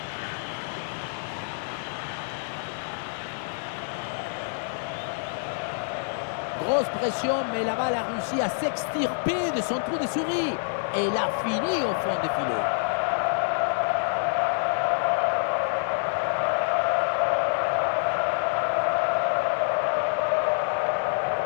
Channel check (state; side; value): silent; right; 59 dB below the other